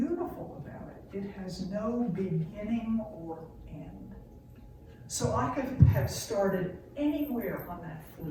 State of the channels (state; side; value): identical; both; correlation 1.00